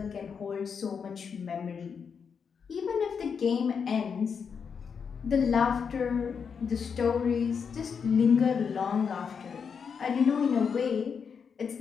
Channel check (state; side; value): quieter; right; 6.4 dB